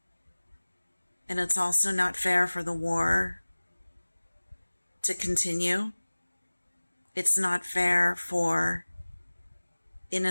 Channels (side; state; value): both; inverted; correlation -1.00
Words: And it's also not fair for the war to continue. It's not fair for